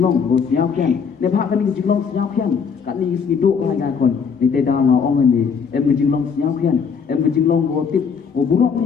ho siap pian ne bha kan ke jinglong siap pian kan ni si do ka ga kon ni te đào ngà ong ai me em ke jinglong siap pian em ke jinglong ho tip ho burok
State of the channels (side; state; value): right; quieter; 6.2 dB